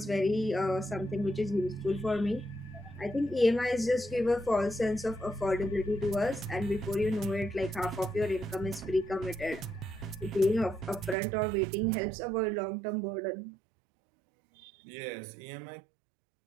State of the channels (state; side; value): drops out; left; at 11.2 s